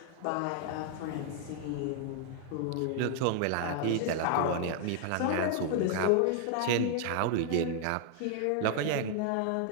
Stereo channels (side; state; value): both; different; correlation 0.00